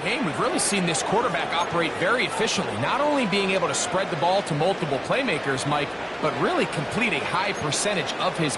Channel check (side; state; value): both; identical; correlation 1.00